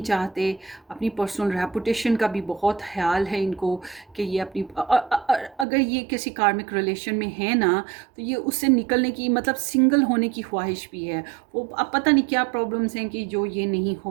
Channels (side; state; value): left; drops out; at 5.7 s